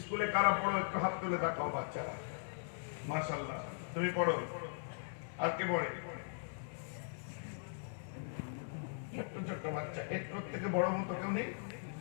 স্কুলে কারা পড়ো একটু হাত তুলে দেখাও। বাচ্চারা, মাশাআল্লাহ, তুমি পড়ো। আর কে পড়ে? ছোট্ট ছোট্ট বাচ্চা, একটু থেকে বড় মতো কেউ নেই?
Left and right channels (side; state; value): right; silent; 51 dB below the other